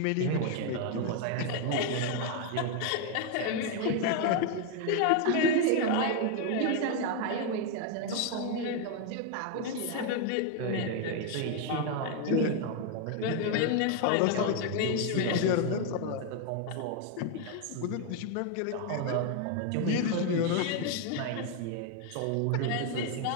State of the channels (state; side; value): different; both; correlation 0.01